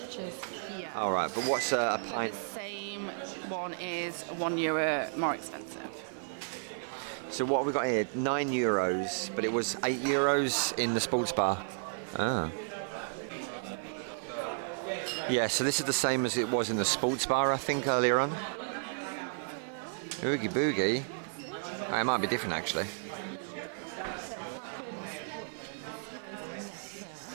here. All right, but what's a But the same one is €1 more expensive. So what have we got here? 9 euros, but it was 8 euros in the sports bar. Exactly. Ah. Little devil cocktail. Yeah, so this is the same as it was in the sports bar, I think, earlier on. Oogie boogie mocktail. Oogie boogie? What's this? Oh, it might be different, actually. Little devil cocktail. Kraken spiced nectar.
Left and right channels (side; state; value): left; silent; 56 dB below the other